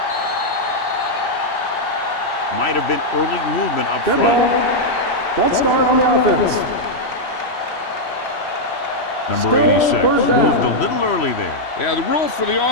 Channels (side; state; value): right; late; 3.1 ms